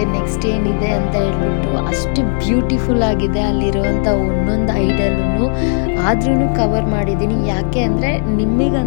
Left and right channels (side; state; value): right; silent; digital silence